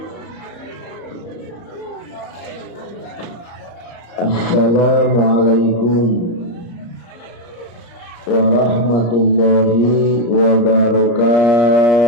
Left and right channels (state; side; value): late; right; 34 ms